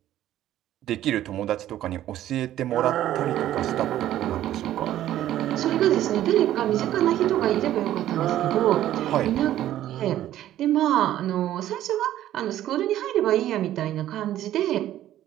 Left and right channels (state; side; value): quieter; left; 12.8 dB